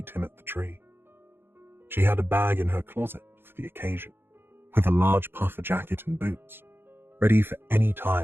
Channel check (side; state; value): left; late; 0.10 ms